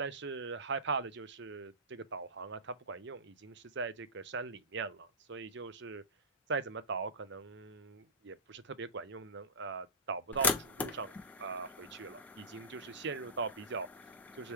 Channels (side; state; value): both; normal; correlation -0.18